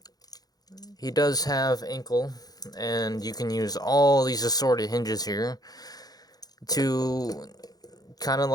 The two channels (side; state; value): right; late; 0.19 ms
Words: He does have ankle, and you can use all these assorted hinges here to kind of